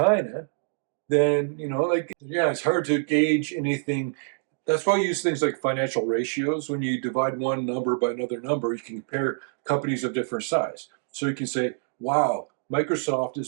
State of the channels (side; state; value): left; silent; digital silence